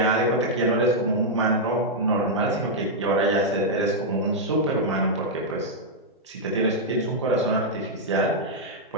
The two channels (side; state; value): both; normal; correlation -0.05